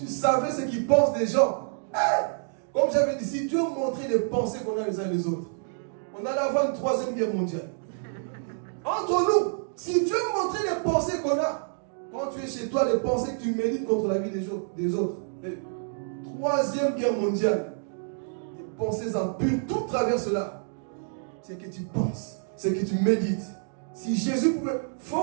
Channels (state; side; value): silent; left; digital silence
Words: savais ce qu'ils pensent des gens. Comme j'avais dit, si Dieu montrait les pensées qu'on a les uns les autres, on allait avoir une 3e guerre mondiale. Entre nous, si Dieu montrait les pensées qu'on a, quand tu es chez toi, les pensées que tu médites contre la vie des autres, 3e guerre mondiale, les pensées impures, tout travers cela. C'est que tu penses, c'est que tu médites. Si Jésus pouvait